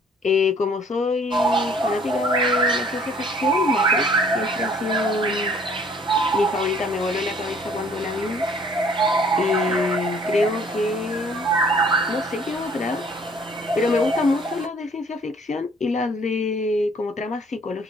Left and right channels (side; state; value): both; normal; correlation 0.58